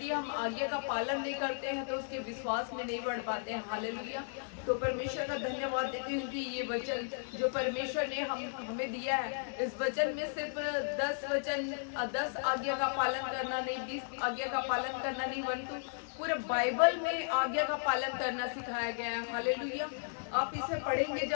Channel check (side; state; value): right; silent; digital silence